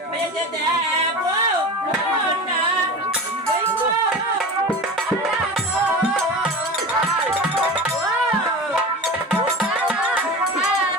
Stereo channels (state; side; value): normal; both; correlation 0.31